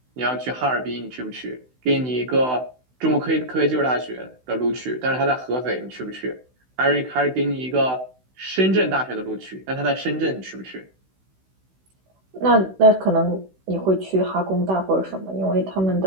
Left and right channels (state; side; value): late; left; 16 ms